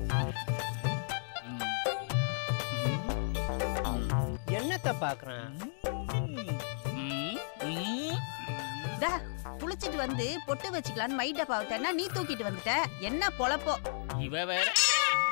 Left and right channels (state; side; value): silent; right; digital silence